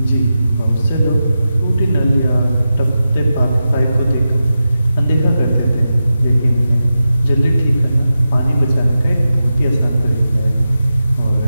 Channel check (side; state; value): both; inverted; correlation -0.91